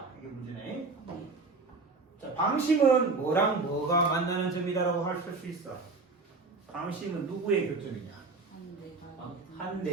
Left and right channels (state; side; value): quieter; left; 3.9 dB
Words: 이게 문제네. 자, 방심은 뭐랑 뭐가 만나는 점이다라고 할 수 있어. 방심은 누구의 교점이냐? 한